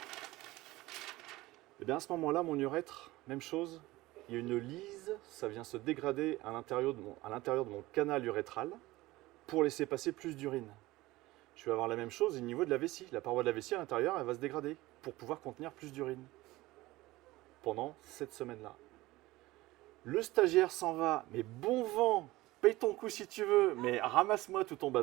Et bien à ce moment-là, mon urètre, même chose, il y a une lise, ça vient se dégrader à l'intérieur de mon canal urétral. pour laisser passer plus d'urine. Je vais avoir la même chose au niveau de la vessie. La paroi de la vessie à l'intérieur, elle va se dégrader pour pouvoir contenir plus d'urine pendant cette semaine-là. Le stagiaire s'en va, mais bon vent, paye ton coup si tu veux, mais ramasse-moi tout ton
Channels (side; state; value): left; quieter; 18.9 dB